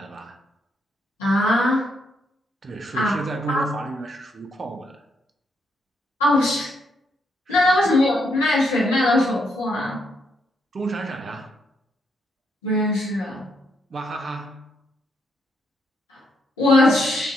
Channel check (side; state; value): both; normal; correlation 0.77